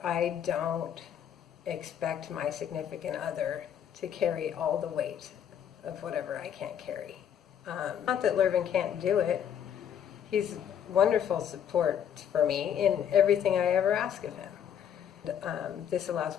I don't expect my significant other to carry all the weight of whatever I can't carry. Not that Lurvin can't do it. He's wonderful support for me in everything I ever ask of him. This allows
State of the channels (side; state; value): right; quieter; 9.1 dB